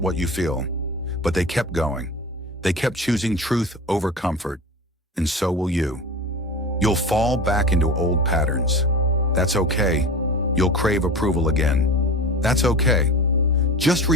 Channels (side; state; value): both; normal; correlation 0.32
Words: what you feel, but they kept going. They kept choosing truth over comfort, and so will you. You'll fall back into old patterns. That's okay. You'll crave approval again. That's okay. Just